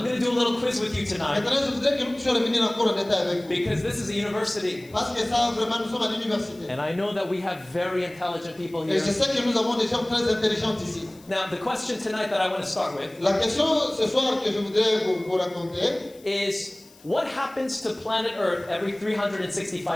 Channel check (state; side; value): noise; left; hiss, 26 dB below the sound